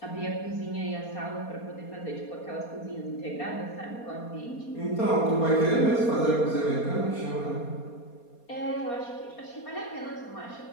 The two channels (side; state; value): right; late; 4.2 ms